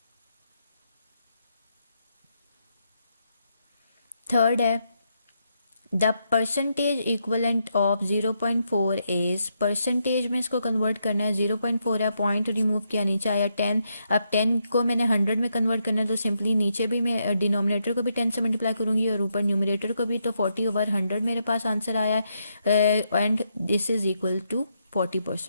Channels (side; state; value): both; inverted; correlation -0.80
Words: थर्ड है the percentage equivalent of 0.4 is, percentage में इसको कन्वर्ट करना है, 0.4 है, पॉइंट रिमूव किया, नीचे आया 10। अब 10 को मैंने 100 में कन्वर्ट करना है तो सिंपली नीचे भी मैं डिनोमिनेटर को भी 10 से मल्टीप्लाई करूंगी और ऊपर न्यूमरेटर को भी, तो 40/100 मेरे पास आंसर आया है and this is equal to